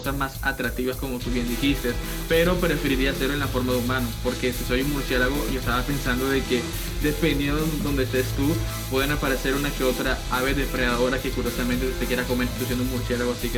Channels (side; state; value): both; identical; correlation 1.00